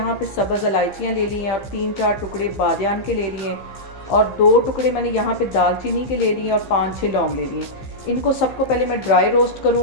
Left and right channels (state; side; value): late; right; 15 ms